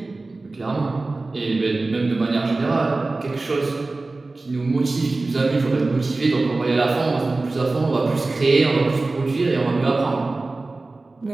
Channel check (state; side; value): quieter; left; 3.3 dB